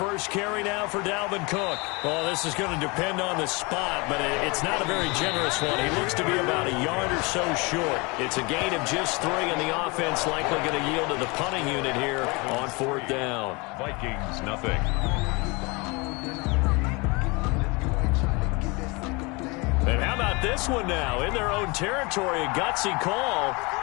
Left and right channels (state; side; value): quieter; right; 27.4 dB